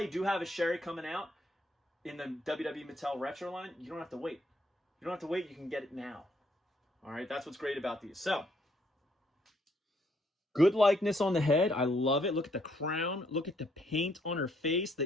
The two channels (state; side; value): normal; both; correlation 0.70